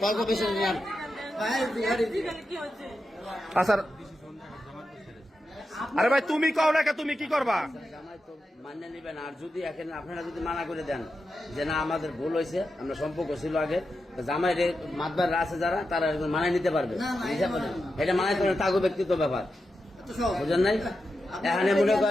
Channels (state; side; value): normal; both; correlation 0.89